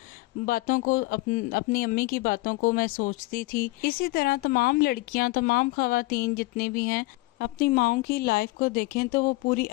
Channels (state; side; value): quieter; right; 21.8 dB